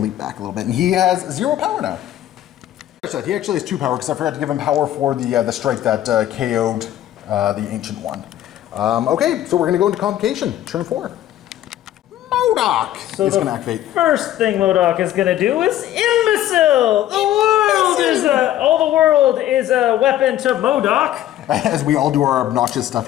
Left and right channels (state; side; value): quieter; right; 12.7 dB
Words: Leap back a little bit. And he has 0 power now. He actually has 2 power because I forgot to give him power for the strike that KO'd the Ancient One. Okay, so we're going to go into Convocation, turn 4. MODOK is going to activate. First thing MODOK is going to do is Imbecile! All the world is a weapon to MODOK. As we all do our obnoxious stuff